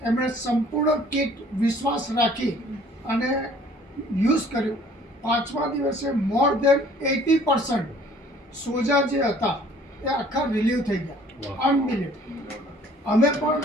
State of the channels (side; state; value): both; normal; correlation 0.55